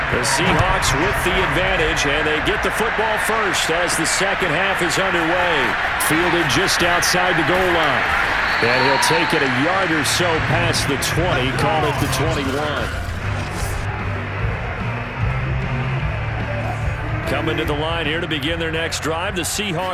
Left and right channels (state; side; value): identical; both; correlation 1.00